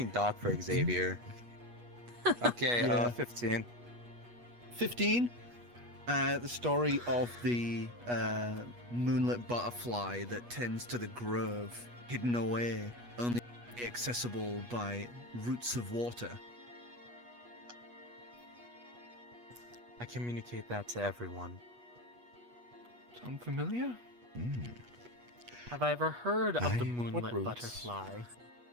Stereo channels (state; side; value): late; left; 8.3 ms